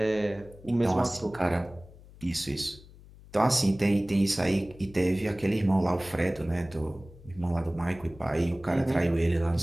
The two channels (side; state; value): left; noise; hum, 21 dB below the sound